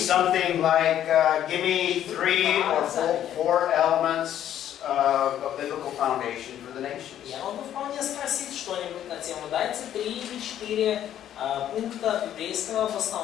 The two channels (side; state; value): right; quieter; 11.0 dB